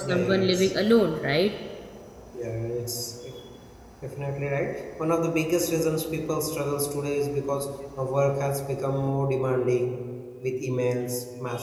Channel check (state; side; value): identical; both; correlation 1.00